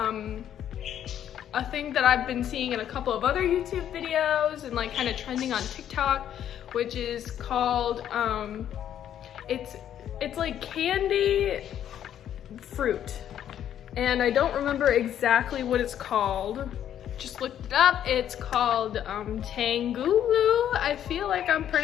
thing that I've been seeing in a couple of other YouTube videos and like kind of trending on TikTok, which is called it's like candy fruit, and I don't remember exactly what it's called. Just looked it up. It's called tanghulu. I feel like I'm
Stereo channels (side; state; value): right; quieter; 10.3 dB